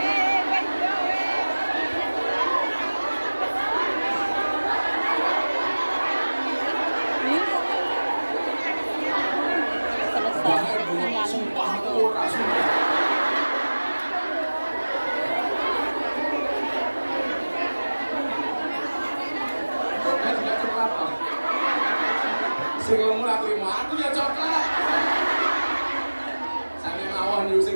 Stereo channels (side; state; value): both; inverted; correlation -1.00